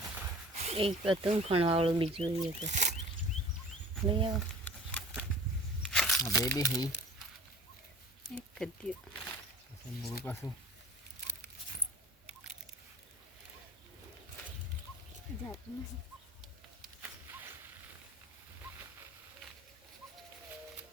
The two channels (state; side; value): normal; both; correlation 0.44